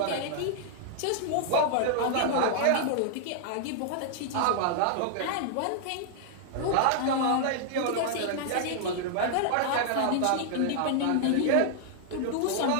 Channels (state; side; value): different; both; correlation -0.01